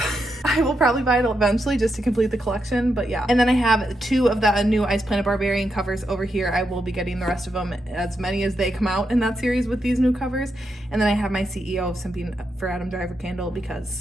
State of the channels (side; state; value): both; normal; correlation 0.84